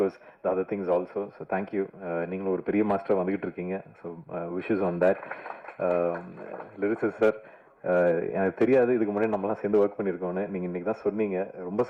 the other things also. So thank you. நீங்களும் ஒரு பெரிய master வந்துகிட்டு இருக்கீங்க. So wishes on that. Lyricist sir, எனக்கு தெரியாது இதுக்கு முன்னாடி நம்மலாம் சேர்ந்து ஒர்க் பண்ணியிருக்கோன்னு. நீங்கள் இன்னைக்கு தான் சொன்னீங்க, ரொம்ப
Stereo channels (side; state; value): both; identical; correlation 1.00